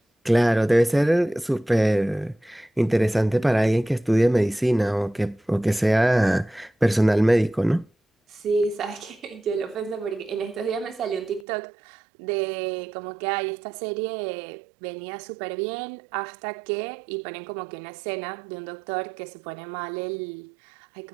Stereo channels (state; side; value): drops out; left; at 11.5 s